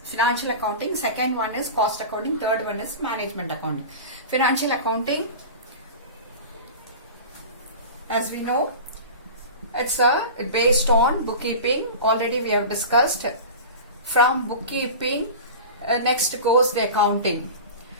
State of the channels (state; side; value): inverted; both; correlation -0.32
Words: financial accounting. Second one is cost accounting. Third one is management accounting. Financial accounting, as we know, it's based on bookkeeping. Already we have discussed. From bookkeeping, next goes the accounting.